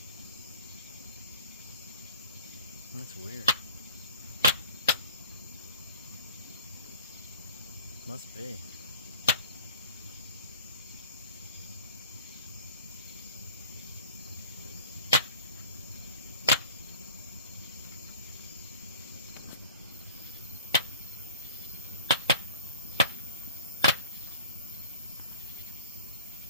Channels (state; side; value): inverted; both; correlation -0.43